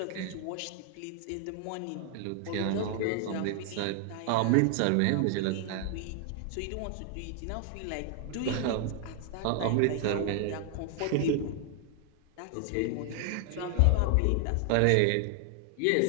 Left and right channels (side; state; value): both; different; correlation 0.00